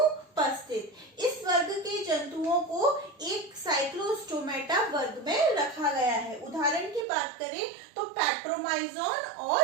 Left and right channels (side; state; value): left; drops out; at 7.1 s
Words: इस वर्ग के जंतुओं को एक साइक्लोस्टोमेटा वर्ग में रखा गया है। उदाहरण की बात करें तो पैट्रोमाइजोन